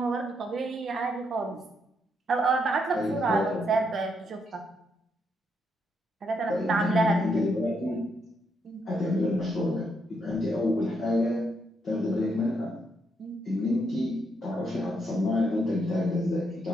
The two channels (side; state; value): both; normal; correlation 0.77